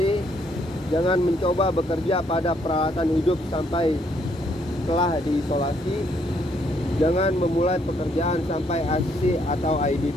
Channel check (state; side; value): normal; both; correlation 0.70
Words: Jangan mencoba bekerja pada peralatan hidup sampai telah diisolasi. Jangan memulai pekerjaan sampai ICC atau